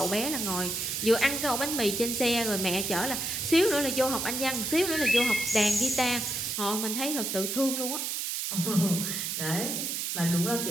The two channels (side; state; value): right; noise; hiss, 2 dB below the sound